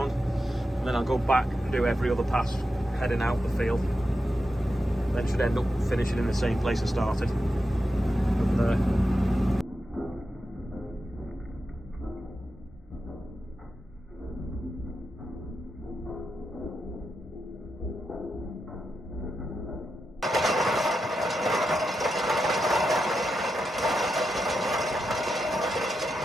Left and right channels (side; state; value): both; normal; correlation 0.88